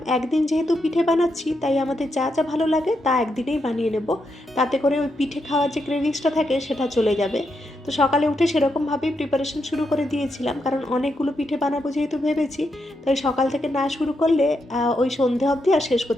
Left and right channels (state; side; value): normal; both; correlation 0.82